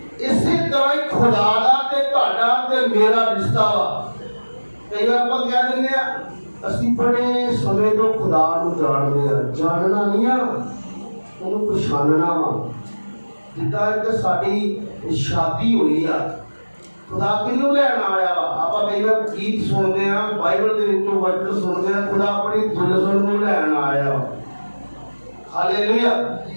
इसी तरह ही खुदा दा ते तुहाडा ते मेरा रिश्ता वा। कई बार आपां कह दिंदे आ ਅਸੀਂ बड़े समय तो खुदा ਨੂੰ ਜਾਣਦੇ ਆ। ਜਾਣਨਾ ਨਹੀਂ ਆ, ਉਹਨੂੰ ਪਛਾਣਨਾ ਵਾ। ਜਿੱਦਾਂ ਇੱਕ ਸਾਡੀ ਸ਼ਾਦੀ ਹੋਈ ਆ खुदा किनू लैन आया वा? आपां कई बार गीत सुनते हैं, बाइबल के विचों वचन सुनते हैं, खुदा अपनी दुल्हन नूं लैन आया वा। हालेलुया।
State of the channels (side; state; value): both; inverted; correlation -1.00